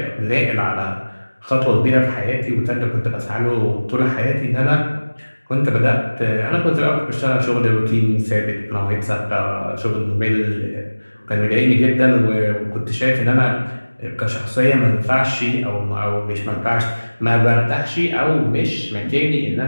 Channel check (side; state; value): both; inverted; correlation -1.00